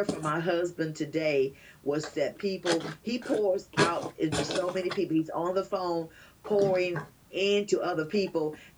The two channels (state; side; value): identical; both; correlation 1.00